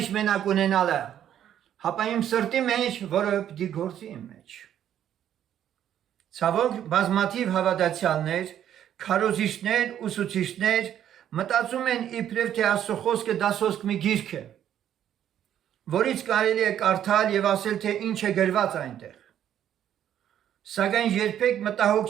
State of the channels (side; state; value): left; quieter; 10.4 dB